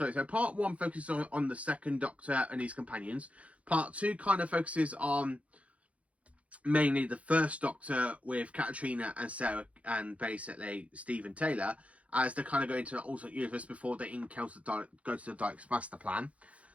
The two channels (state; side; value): late; left; 0.065 ms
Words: So part 1 focuses on the second Doctor and his companions. Part 2 kind of focuses on mainly the first Doctor with Katrina and Sarah and basically Stephen Taylor, as they kind of go into an alternate universe before they encounter go to the Daleks' master plan.